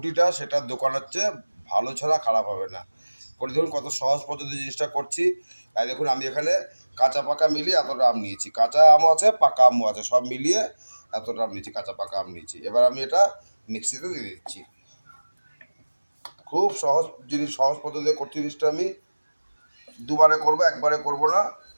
সেটা দোকানের চেয়ে ভালো ছাড়া খারাপ হবে না। করে দেখুন কত সহজ পদ্ধতি জিনিসটা করছি। তাই দেখুন আমি এখানে কাঁচা পাকা মিলিয়ে এতটা আম নিয়েছি, কাঁচা আমও আছে পাকা আমও আছে, সব মিলিয়ে এতটা আম নিয়েছি, কাঁচা পাকা আম নিয়েছি। এবার আমি এটা মিক্সিতে দিয়ে দিচ্ছি। খুব সহজ জিনিস, সহজ পদ্ধতিতে করছি জিনিসটা। আমি দুবারে করবো, একবারে করবো না,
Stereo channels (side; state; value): both; inverted; correlation -1.00